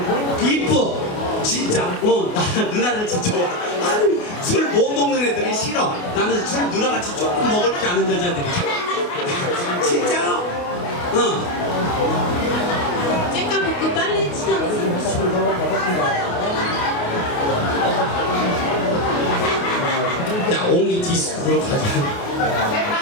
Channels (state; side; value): late; right; 28 ms